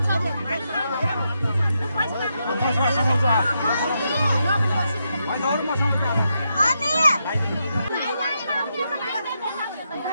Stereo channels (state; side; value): inverted; both; correlation -0.83